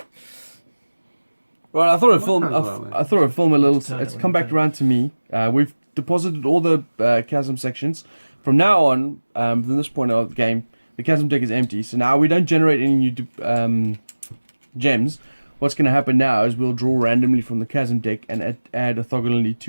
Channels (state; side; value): inverted; both; correlation -1.00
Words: Right, I thought I'd film. I thought I'd film a little. It's come back around to me. We've deposited all the chasm sections. From now on, from this point of the game, the chasm deck is empty. So now we don't generate any new gems. What's going to happen now is we'll draw randomly from the chasm deck and add orthogonally